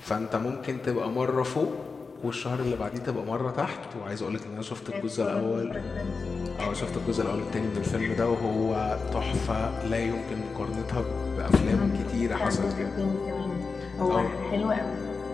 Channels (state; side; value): quieter; right; 4.5 dB